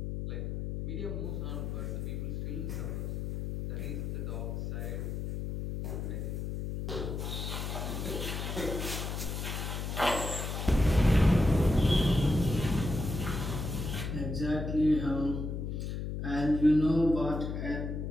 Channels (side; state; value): left; noise; hum, 3 dB below the sound